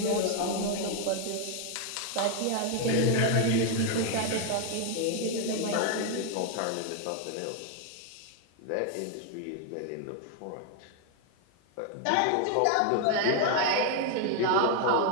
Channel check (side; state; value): both; different; correlation 0.00